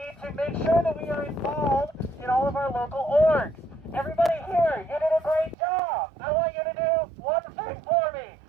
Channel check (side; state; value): left; drops out; at 5.6 s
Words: to make sure that we are involved in all of our local orgs. Everybody here, you did a great job. I want you to do one thing for me.